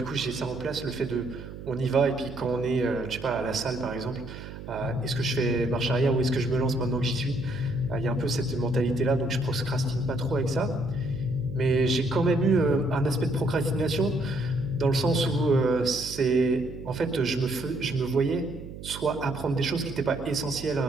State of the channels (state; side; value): noise; right; hum, 12 dB below the sound